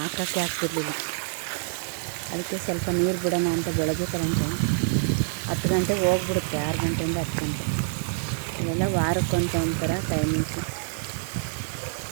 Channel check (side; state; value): left; silent; 61 dB below the other